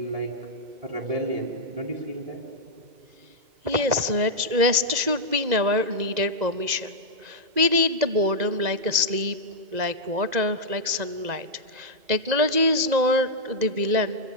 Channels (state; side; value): late; left; 2.0 ms